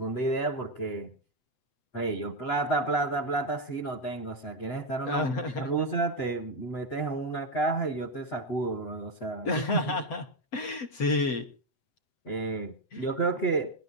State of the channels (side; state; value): right; late; 7.9 ms